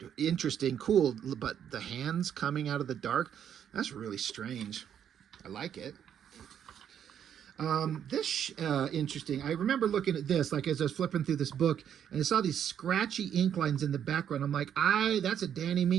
interesting, cool, but the hands coming out of the dark, that's really strange. I like it. This interesting. I remember looking at this, like as I was flipping through this book, and I saw these scratchy ink lines in the background. I'm like, that's a Danny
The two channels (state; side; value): quieter; left; 9.1 dB